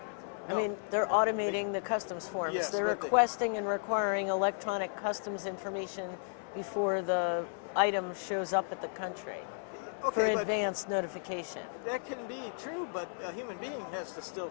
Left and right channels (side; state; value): right; silent; 55 dB below the other